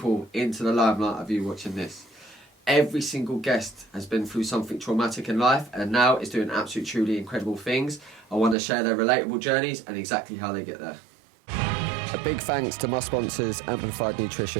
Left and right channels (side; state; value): left; drops out; at 8.6 s